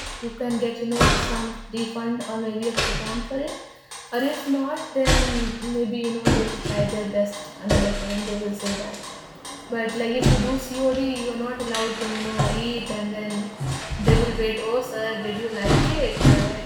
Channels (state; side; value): identical; both; correlation 1.00